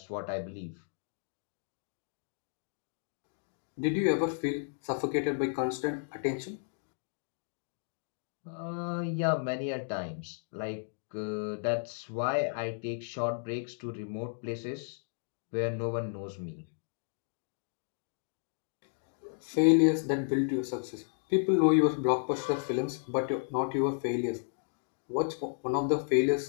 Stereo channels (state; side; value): silent; right; digital silence